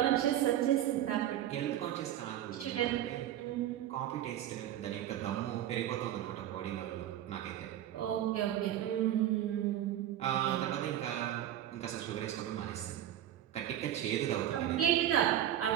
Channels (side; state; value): left; quieter; 11.7 dB